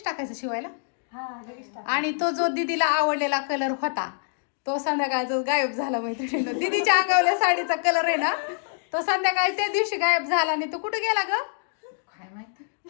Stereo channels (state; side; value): silent; right; digital silence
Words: टाकायचं शिवायला. आणि तो जो दीदीला आवडलेला कलर होता तो संध्याकाळचा गायब झाला मैत्रिणीनं. दीदीच्या अंगावल्या साडीचा कलर आहे ना तो संध्याकाळी त्या दिवशी गायब झाला. आणि तो कुठे गेला ग काय माहिती,